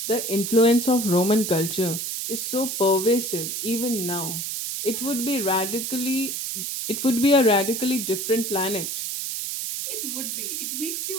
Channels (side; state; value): right; noise; hiss, 3 dB below the sound